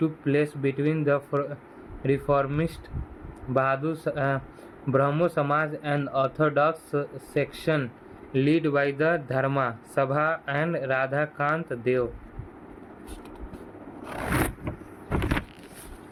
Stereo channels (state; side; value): identical; both; correlation 1.00